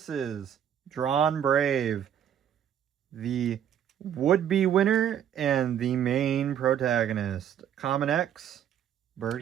DranBrave, the would-be winner and the main protagonist. Common X,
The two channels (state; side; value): quieter; left; 9.6 dB